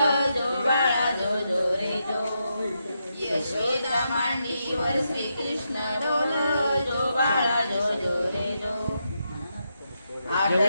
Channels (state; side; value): inverted; both; correlation -0.83